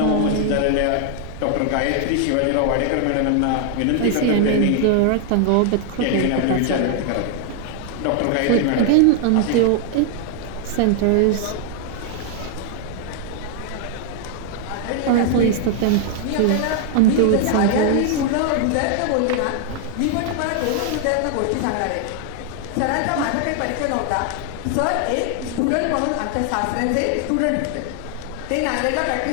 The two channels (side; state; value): both; different; correlation 0.00